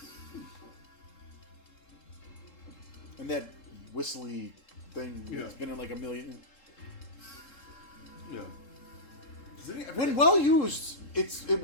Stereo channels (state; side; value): late; right; 3.7 ms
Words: And that whistly thing Yeah. has been in like a million. Yeah. Does any- When well used, it